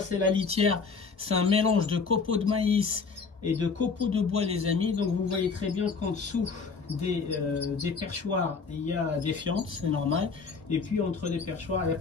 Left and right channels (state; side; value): quieter; right; 5.0 dB